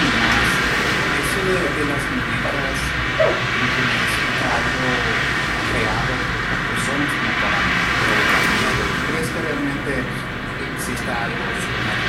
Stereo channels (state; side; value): identical; both; correlation 1.00